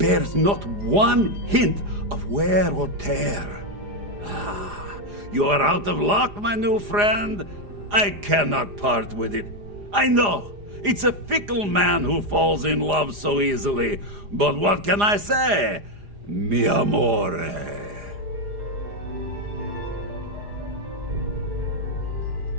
not one hint of wear or tear. Ah, You are out of luck, my new friend. I cannot part with it. I know, it's a fickle man who falls in love so easily. But what can I say? Mi amore.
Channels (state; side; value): late; left; 4.9 ms